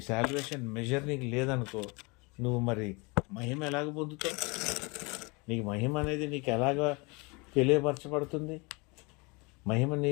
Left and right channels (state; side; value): quieter; right; 28.1 dB